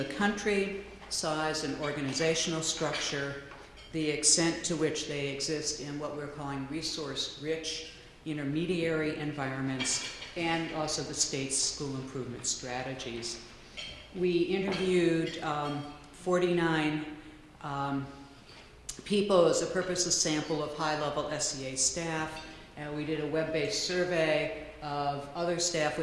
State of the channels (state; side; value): identical; both; correlation 1.00